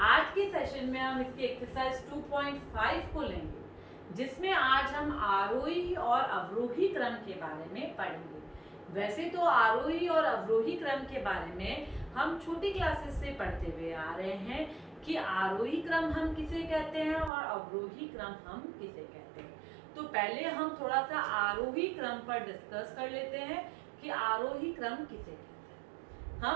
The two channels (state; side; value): drops out; left; at 17.3 s